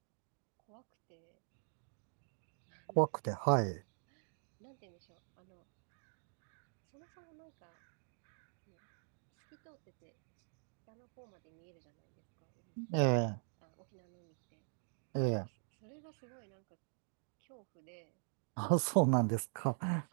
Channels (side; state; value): left; silent; digital silence